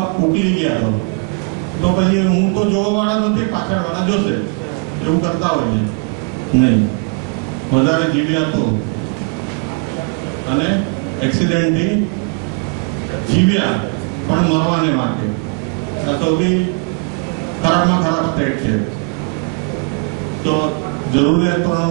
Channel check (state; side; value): quieter; left; 35.2 dB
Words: ઉકલી ગયા તો પછી હું તો જોવા વાળા નથી, પાછળ વાળા જોશે, એવું કરતા હોય છે. નહીં, વધારે જીવ્યા તો, અને એક્સિડન્ટથી જીવ્યા પણ મરવાને વાંકે. આ સૌથી ખરાબમાં ખરાબ સ્ટેટ છે. તો જરૂરિયાત